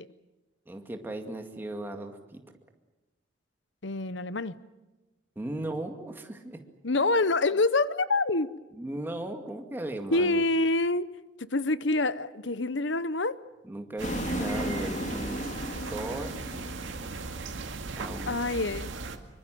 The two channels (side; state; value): both; normal; correlation 0.04